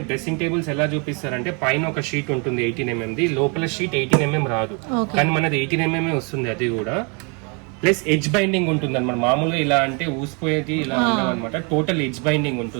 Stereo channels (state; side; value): quieter; left; 34.1 dB